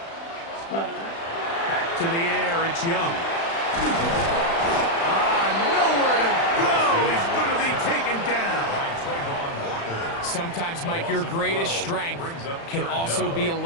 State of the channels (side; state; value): right; late; 35 ms